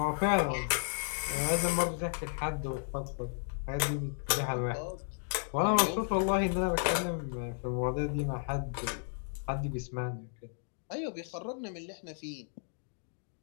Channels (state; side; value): silent; right; digital silence